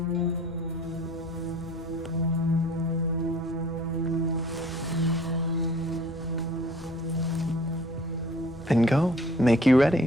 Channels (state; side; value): normal; both; correlation 0.53